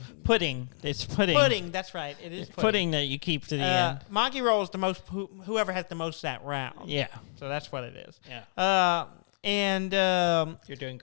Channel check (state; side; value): silent; right; digital silence